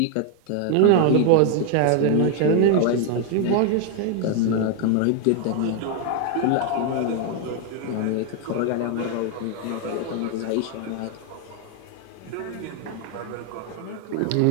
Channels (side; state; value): both; different; correlation 0.01